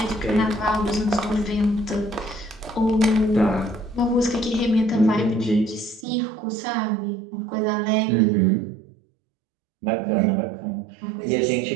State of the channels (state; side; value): drops out; left; at 6.1 s